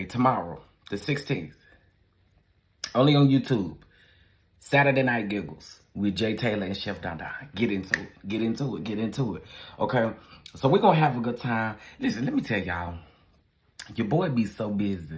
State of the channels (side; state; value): both; identical; correlation 1.00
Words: tomorrow, the 16th, only on YouTube, Saturday Night Giggles with Jay Taylor and Chef DonDons. Get into it. Okay? So we're gonna have a good time. Listen, let me tell y'all, your boy be so